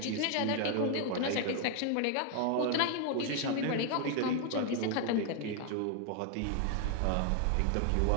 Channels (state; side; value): different; both; correlation 0.00